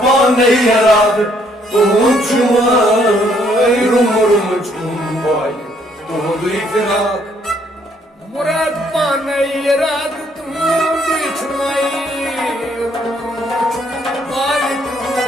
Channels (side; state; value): both; normal; correlation 0.67